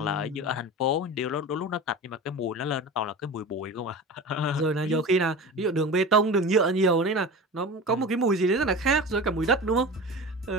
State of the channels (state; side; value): normal; both; correlation 0.32